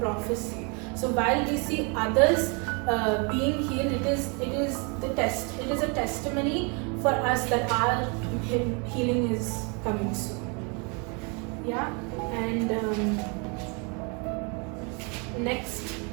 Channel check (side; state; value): left; quieter; 33.6 dB